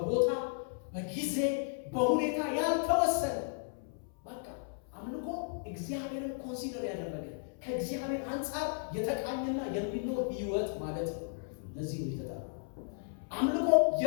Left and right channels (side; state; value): right; silent; 55 dB below the other